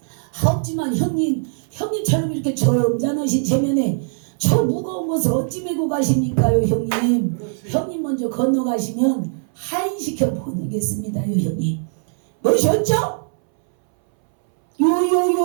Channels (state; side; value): silent; left; 64 dB below the other